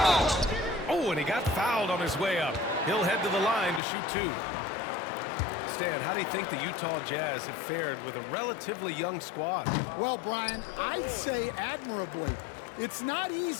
Oh, and he got fouled on his way up. He'll head to the line to shoot 2. Stan, how do you think the Utah Jazz have fared with a relatively young squad? Well, Brian, I'd say admirably. It's not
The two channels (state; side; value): drops out; right; at 3.8 s